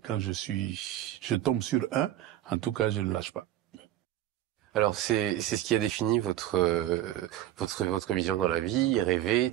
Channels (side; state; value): left; quieter; 13.3 dB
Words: je tombe sur un, en tout cas, je ne lâche pas. Alors c'est ce qui a défini votre vision dans la vie, rêver,